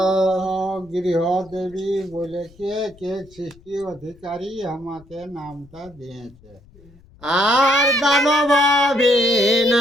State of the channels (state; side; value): noise; left; rumble, 26 dB below the sound